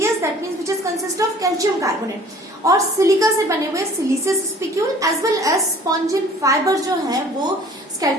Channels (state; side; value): normal; both; correlation 0.51